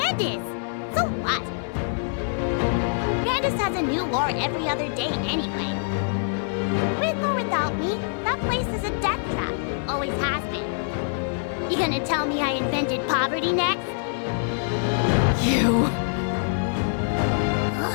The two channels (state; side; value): silent; right; digital silence